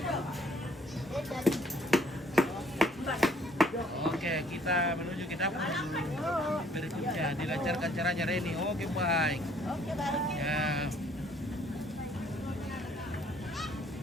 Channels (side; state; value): both; normal; correlation 0.61